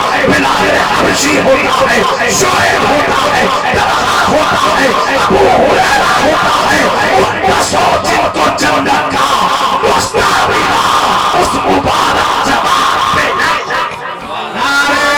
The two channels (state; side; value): identical; both; correlation 1.00